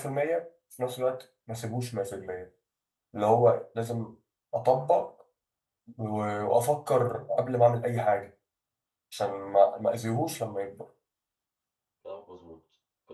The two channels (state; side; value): identical; both; correlation 1.00